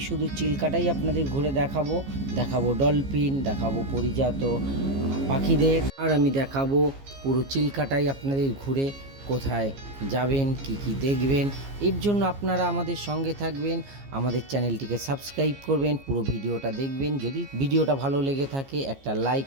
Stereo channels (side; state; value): left; late; 15 ms